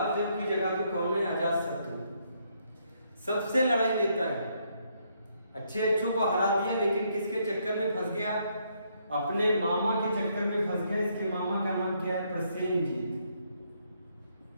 देव की जगह पे कौन है? अजातशत्रु। सबसे लड़ाई लेता है, अच्छे अच्छों को हरा दिया, लेकिन किसके चक्कर में फंस गया? अपने मामा के चक्कर में फंस गया। इसके मामा का नाम क्या है? प्रसेनजीत।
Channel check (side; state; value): both; inverted; correlation -0.73